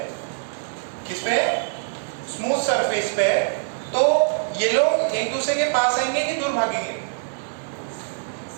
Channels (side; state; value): left; silent; 59 dB below the other